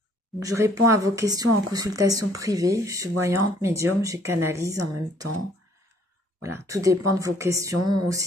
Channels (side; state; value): both; normal; correlation 0.61